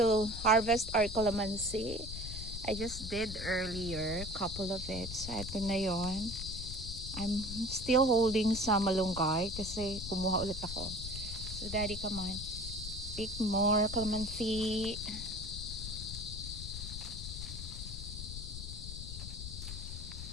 harvest our calamansi. I just did earlier, couple of it. So ito na yon. I'm still holding some malunggay kasi kumuha ulit ako. So Daddy, come on. Pick more calamansi.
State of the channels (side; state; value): left; noise; rumble, 8 dB below the sound